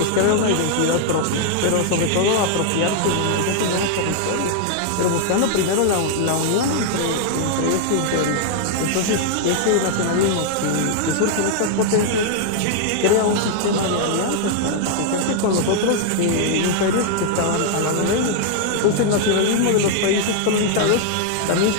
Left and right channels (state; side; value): different; both; correlation 0.00